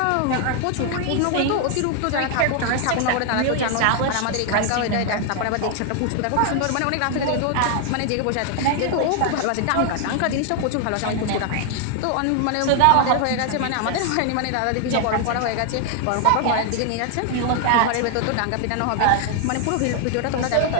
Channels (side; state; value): both; different; correlation 0.00